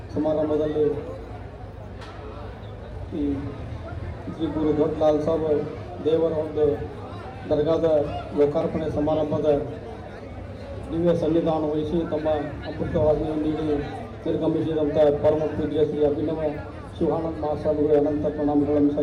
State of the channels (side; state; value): both; identical; correlation 1.00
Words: ಸಮಾರಂಭದಲ್ಲಿ ಈ ಶ್ರೀ ಗುರು ದೊಡ್ಡ ಲಾಲ್ ಸಾಬ್ ದೇವರ ಒಂದು ದರ್ಗಾದ ಲೋಕಾರ್ಪಣೆ ಸಮಾರಂಭದ ದಿವ್ಯ ಸನ್ನಿಧಾನ ವಹಿಸಿ ತಮ್ಮ ಅಮೃತವಾದಿಯನ್ನು ನೀಡಿ ನಿರ್ಗಮಿಸಿದಂಥ ಪರಮ ಪೂಜ್ಯ ಶ್ರೀ ಅಭಿನವ ಶಿವಾನಂದ ಮಹಾಸ್ವಾಮಿಗಳು ಅನಂತ ಪ್ರಣಾಮಗಳನ್ನು